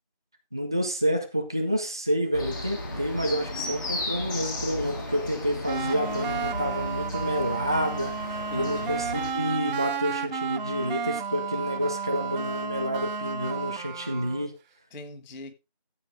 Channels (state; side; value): inverted; both; correlation -0.63